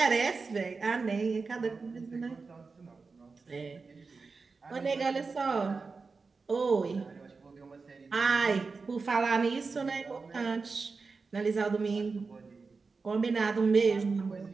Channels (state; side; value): quieter; left; 4.4 dB